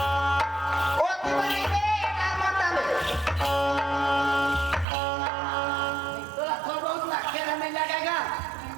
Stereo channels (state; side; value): drops out; left; at 4.9 s